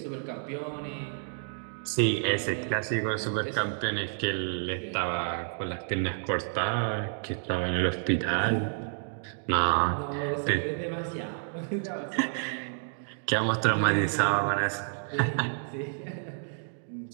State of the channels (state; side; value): silent; left; digital silence